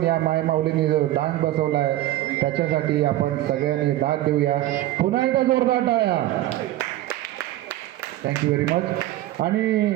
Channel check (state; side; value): quieter; left; 15.0 dB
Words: या मायमाऊलीने जो डान्स बसवला आहे त्याच्यासाठी आपण सगळ्यांनी दाद देऊया पुन्हा एकदा जोरदार टाळ्या थँक्यू व्हेरी मच आणि